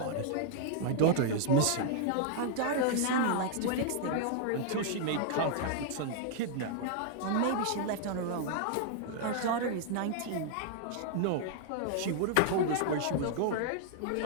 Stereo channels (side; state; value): both; different; correlation -0.01